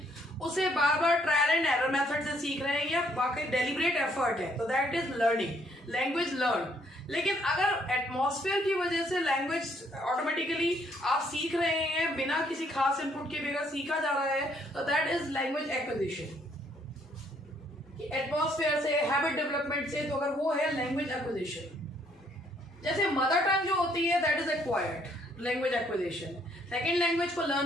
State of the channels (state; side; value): normal; both; correlation 0.68